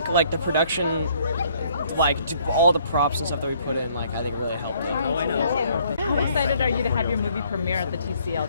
like the production, like all the props and stuff that we put in, like I think really helped it. Oh, I know. How excited are you to have your movie premiere at the TCL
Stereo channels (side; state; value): both; inverted; correlation -0.63